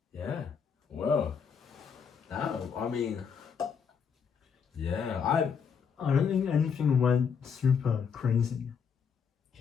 Yeah. Well, no, I mean, yeah, I don't think anything went super crazy,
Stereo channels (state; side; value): quieter; right; 6.6 dB